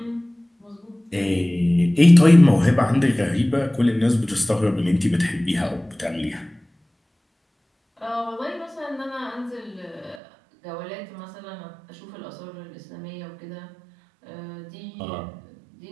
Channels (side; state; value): left; drops out; at 10.2 s